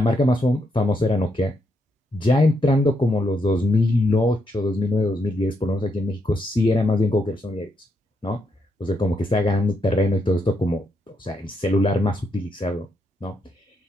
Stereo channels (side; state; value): both; normal; correlation 0.79